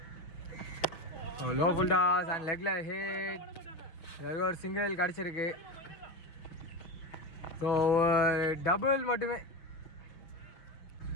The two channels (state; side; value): late; right; 6.3 ms